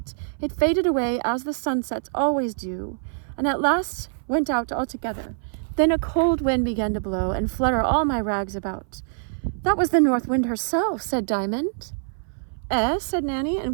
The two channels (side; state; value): left; silent; 59 dB below the other